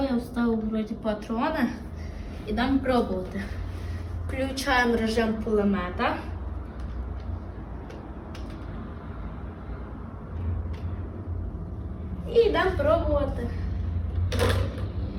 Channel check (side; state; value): both; identical; correlation 1.00